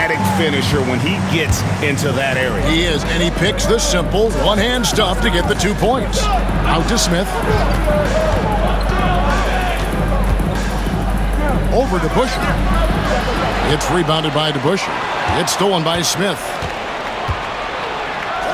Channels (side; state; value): both; identical; correlation 1.00